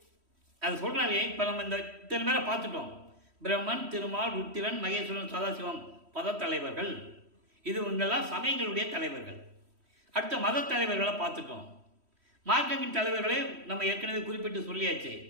அது சொல்கிறாரு. இப்போ நம்ம இந்த இத்தனை பேரை பார்த்துட்டோம். பிரம்மன், திருமால், ருத்திரன், மகேஸ்வரன், சதாசிவம் பதத்தலைவர்கள். இது இவங்கெல்லாம் சமயங்களுடைய தலைவர்கள். அடுத்த மத தலைவர்களை பார்த்துட்டோம். மார்க்கத்தின் தலைவர்களே நம்ம ஏற்கனவே குறிப்பிட்டு சொல்லியாச்சு.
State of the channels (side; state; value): left; late; 3.1 ms